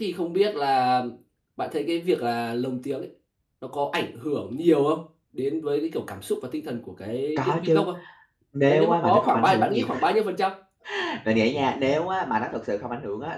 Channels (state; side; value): identical; both; correlation 1.00